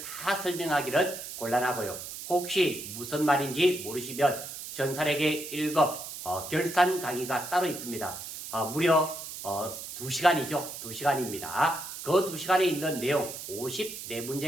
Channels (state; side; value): noise; right; hiss, 9 dB below the sound